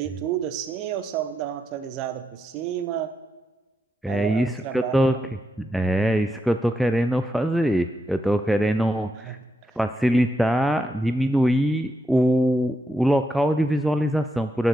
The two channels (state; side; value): normal; both; correlation 0.84